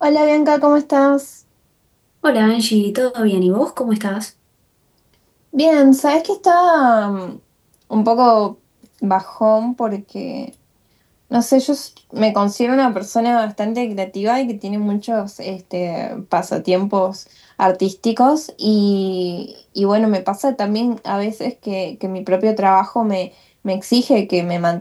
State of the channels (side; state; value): both; identical; correlation 1.00